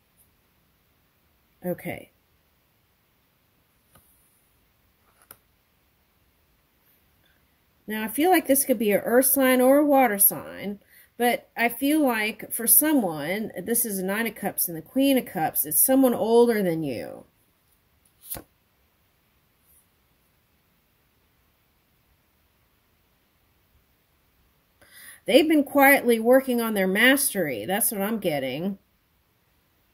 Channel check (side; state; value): both; identical; correlation 1.00